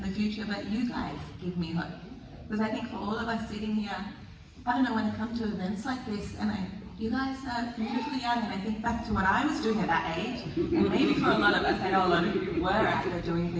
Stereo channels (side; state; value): both; identical; correlation 1.00